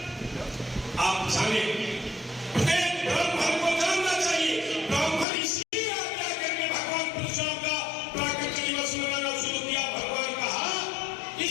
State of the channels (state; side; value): drops out; right; at 5.2 s